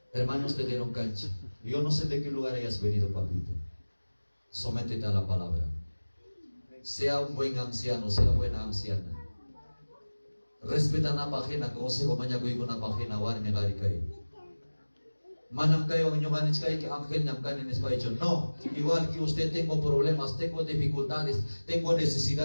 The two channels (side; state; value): both; inverted; correlation -1.00